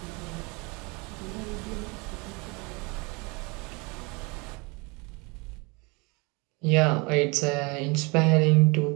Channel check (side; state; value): left; quieter; 28.3 dB